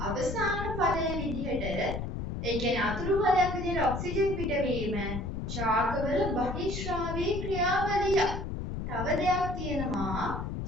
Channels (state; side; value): noise; left; rumble, 4 dB below the sound